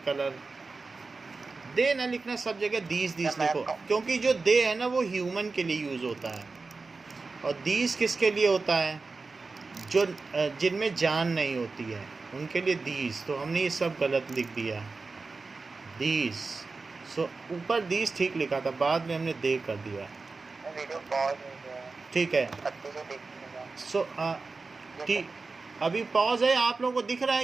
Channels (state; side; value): quieter; left; 4.0 dB